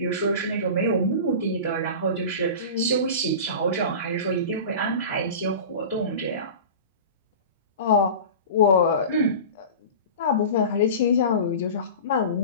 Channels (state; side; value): inverted; both; correlation -0.33